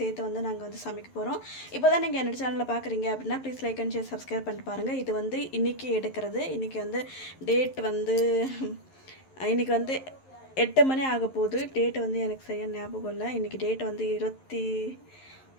சேர்த்து வந்து நாங்க வந்து சமைக்க போறோம். இப்போதான் நீங்க என்னோட சேனலை பார்க்குறீங்க அப்படின்னா please like and share subscribe பண்ணிட்டு பாருங்க. இது வந்து இன்னைக்கு எடுக்கிறது. இன்னைக்கு வந்து டேட் வந்து இன்னைக்கு வந்து 8 மணி ஆக போகுது. டேட் வந்து எனக்கு சரியாக ஞாபகம் இல்லை. இன்றைக்கி டேட் வந்து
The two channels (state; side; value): late; right; 11 ms